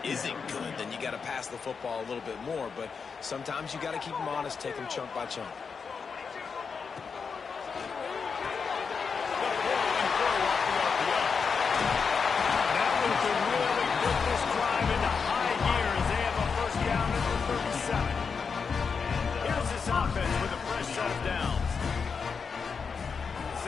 isn't good, then you got to pass the football a little bit more. But sometimes you got to keep them honest, take them chunk by chunk.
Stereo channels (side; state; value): right; quieter; 5.6 dB